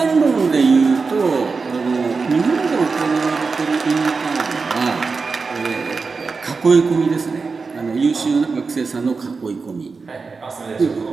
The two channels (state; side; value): quieter; left; 4.5 dB